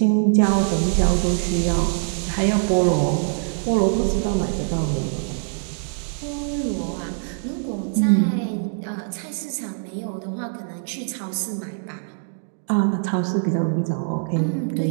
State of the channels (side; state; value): left; silent; digital silence